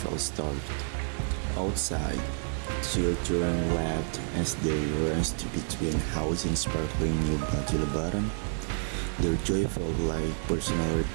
starved. Outside, children laughed as they raced between housing sparkling new baju lebaran. Their joy felt like personal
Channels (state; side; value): silent; left; digital silence